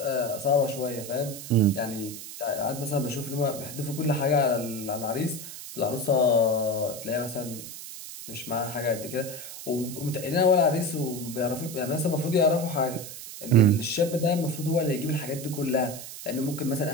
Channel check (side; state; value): right; noise; hiss, 11 dB below the sound